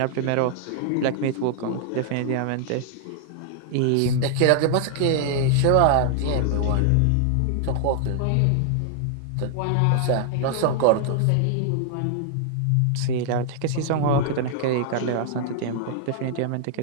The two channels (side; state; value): both; different; correlation 0.00